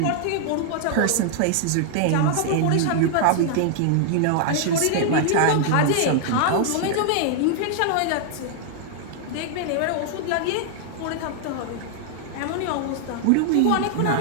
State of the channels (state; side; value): different; both; correlation 0.00